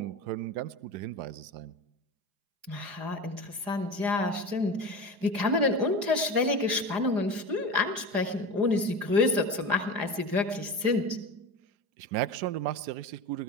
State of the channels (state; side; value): late; left; 4.9 ms